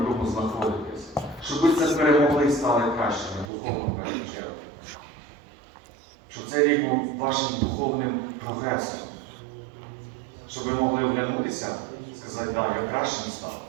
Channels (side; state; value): left; drops out; at 3.5 s